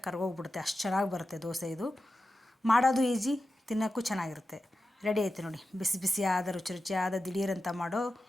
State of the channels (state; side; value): normal; both; correlation 0.91